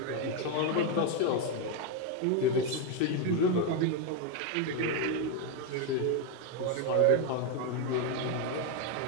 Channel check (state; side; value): different; both; correlation 0.02